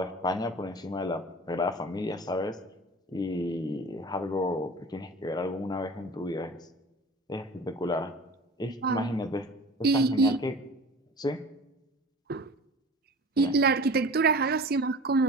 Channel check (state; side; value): normal; both; correlation 0.40